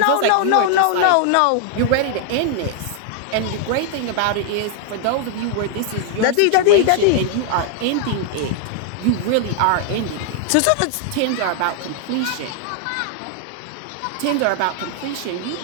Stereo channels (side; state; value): both; different; correlation 0.00